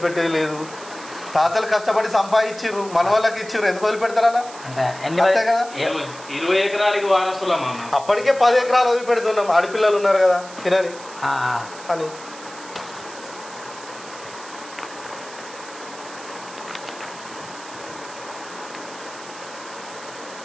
లేదు. తాతలు కష్టపడి సంపాదించారు, మన వాళ్ళకి ఇచ్చారు, ఎందుకు వదిలిపెడతారా? అంతే కదా. 20 ఎకరాలకి వారసులా? అప్పటికే 10 ఎకరాలు వదిలిపెడుతున్నాం, ఆడపిల్లలు ఉన్నారు కదా తినని అని.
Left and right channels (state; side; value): noise; right; hiss, 17 dB below the sound